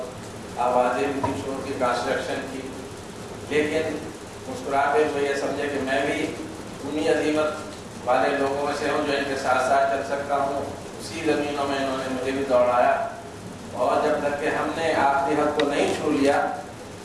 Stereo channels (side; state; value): both; identical; correlation 1.00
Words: آوازیں بھی تھی شور کی، کنسٹرکشن کی، لیکن مسکراتے ہوئے یہ سمجھے کہ میں بھی انہی عظیمت والے لوگوں میں سے ہوں جو ان کے ساتھ ساتھ چل سکتا ہوں. اسی زمینوں میں انہوں نے مجھے بھی دوڑایا، اور جب تک کہ ہم نے آخری حد کو نہیں چھو لیا